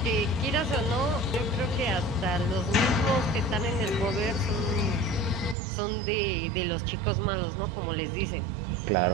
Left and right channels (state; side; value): drops out; left; at 5.6 s